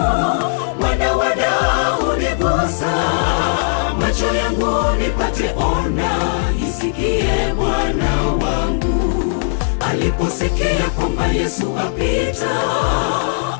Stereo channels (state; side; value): silent; right; digital silence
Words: Mwana wa Daudi gusa macho yangu nipate ona, isikie Bwana wangu. Aliposikia kwamba Yesu apita,